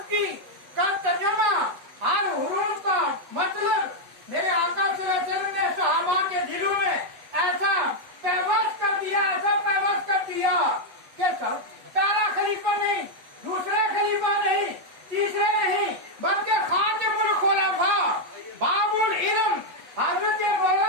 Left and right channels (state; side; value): late; left; 8.1 ms